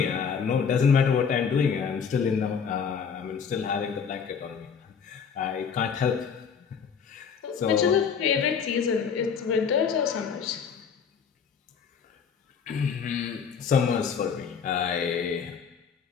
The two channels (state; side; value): quieter; right; 6.6 dB